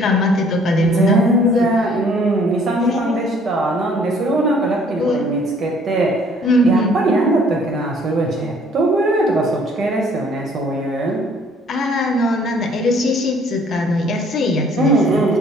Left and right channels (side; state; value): both; normal; correlation 0.59